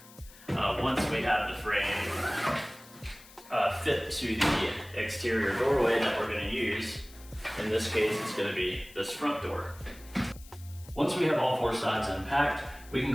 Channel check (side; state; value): left; noise; hiss, 21 dB below the sound